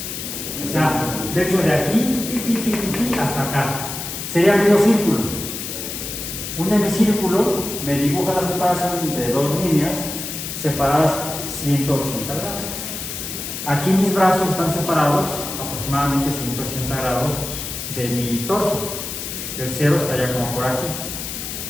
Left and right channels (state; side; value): noise; left; hiss, 6 dB below the sound